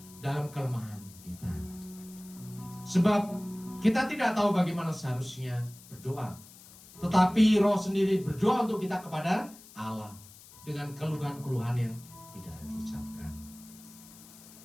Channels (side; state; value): left; noise; hiss, 20 dB below the sound